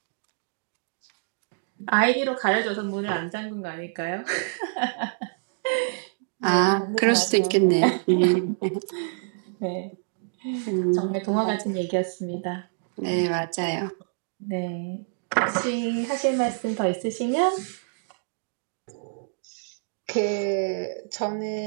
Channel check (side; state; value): left; silent; digital silence